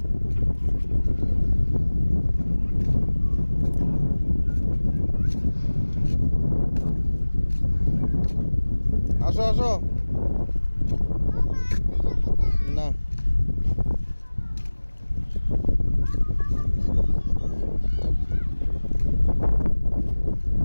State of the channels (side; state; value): both; inverted; correlation -1.00